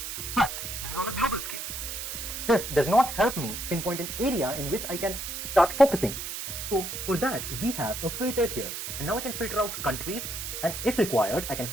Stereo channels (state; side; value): noise; right; hiss, 6 dB below the sound